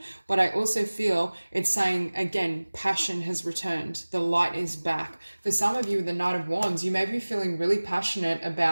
But I also feel it's saying, again, passion has returned. The light is back. For some of you with the Knight of Wands, you may be feeling really passionate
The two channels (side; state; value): both; inverted; correlation -1.00